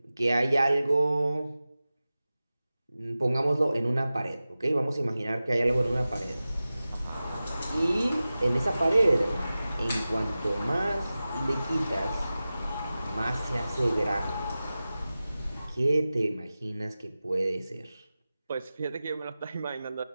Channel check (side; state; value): both; inverted; correlation -0.95